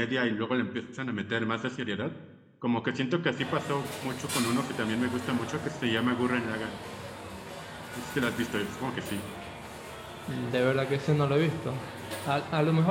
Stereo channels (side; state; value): both; identical; correlation 1.00